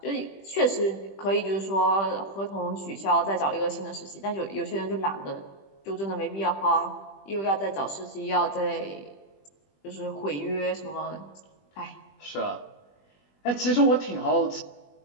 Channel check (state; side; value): late; right; 20 ms